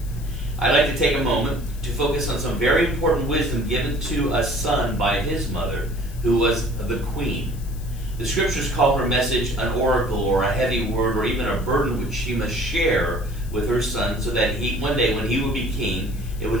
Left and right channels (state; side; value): noise; left; hiss, 21 dB below the sound